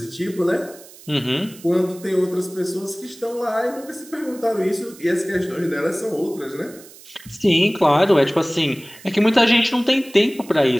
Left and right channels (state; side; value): noise; right; hiss, 21 dB below the sound